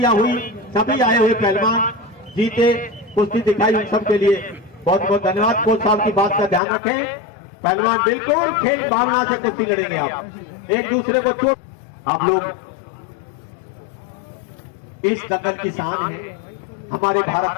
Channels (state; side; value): drops out; right; at 6.6 s